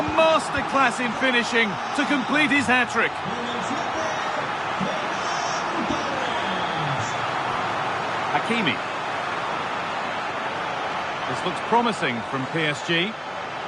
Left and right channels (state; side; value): identical; both; correlation 1.00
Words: masterclass in finishing to complete his hat-trick. Hakimi. This looks promising from PSG.